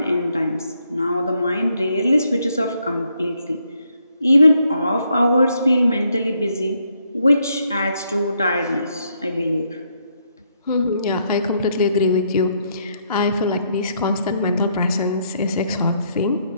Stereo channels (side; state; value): both; inverted; correlation -0.74